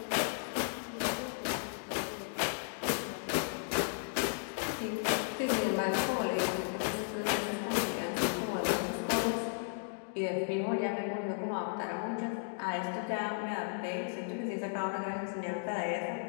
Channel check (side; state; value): right; silent; digital silence